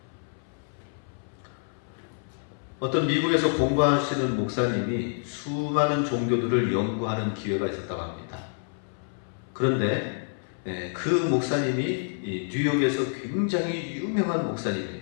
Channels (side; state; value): right; silent; 60 dB below the other